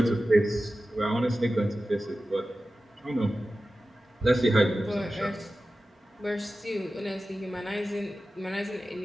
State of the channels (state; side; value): normal; both; correlation 0.94